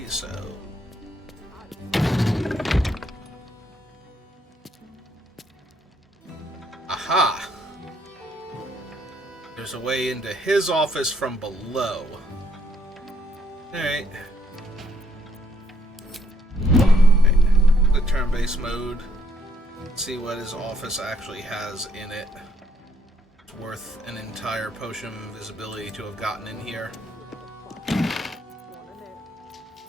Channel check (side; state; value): both; normal; correlation 0.69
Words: so... Aha! There's a way into his office from below. Alright. The turn-based mode. Let's see what his office actually has in it. It's worth an entire potion of invisibility to have gotten in here.